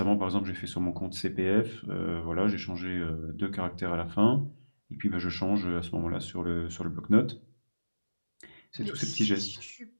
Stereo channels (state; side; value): inverted; both; correlation -1.00